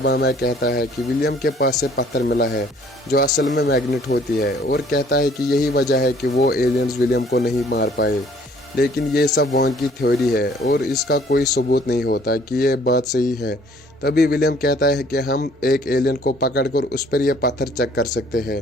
में कहता है कि विलियम के पास से पत्थर मिला है जो असल में मैग्नेट होती है, और कहता है कि यही वजह है कि वो एलियंस विलियम को नहीं मार पाए। लेकिन ये सब वांग की थ्योरी है और इसका कोई सबूत नहीं होता कि ये बात सही है। तभी विलियम कहता है कि हम एक एलियन को पकड़कर उस पर यह पत्थर चेक कर सकते हैं।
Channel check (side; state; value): both; normal; correlation 0.58